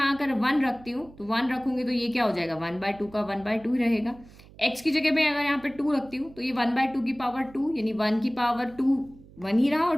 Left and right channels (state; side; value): noise; right; hum, 22 dB below the sound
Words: अगर 1 रखती हूँ तो 1 रखूंगी तो ये क्या हो जाएगा 1/2 का 1/2 ही रहेगा। x की जगह पे अगर यहाँ पे 2 रखती हूँ तो ये 1/2 की पावर 2 यानी 1 की पावर 2 1 ही रहा, और